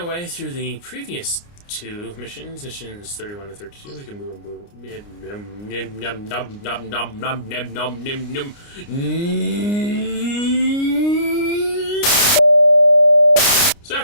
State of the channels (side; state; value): right; late; 29 ms